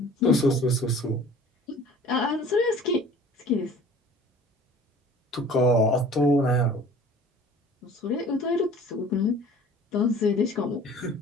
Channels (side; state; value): both; normal; correlation 0.47